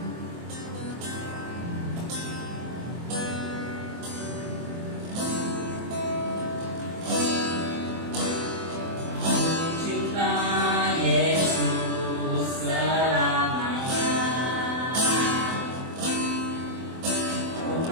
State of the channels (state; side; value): late; left; 24 ms